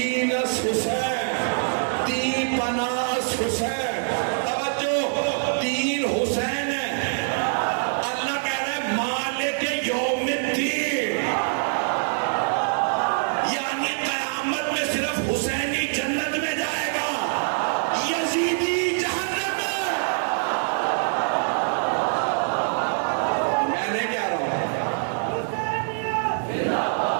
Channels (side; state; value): left; silent; digital silence